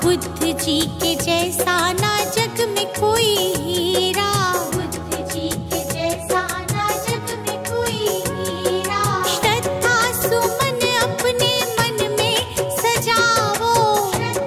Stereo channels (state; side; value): identical; both; correlation 1.00